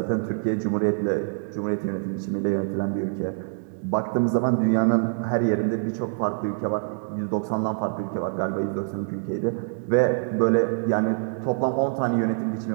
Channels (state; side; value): silent; left; digital silence